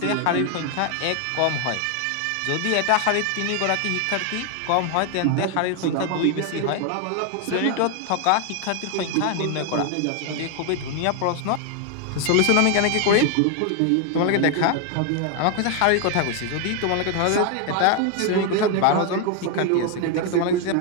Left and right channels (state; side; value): different; both; correlation 0.01